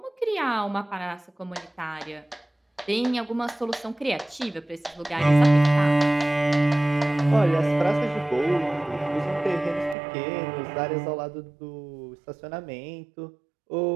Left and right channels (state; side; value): drops out; left; at 10.0 s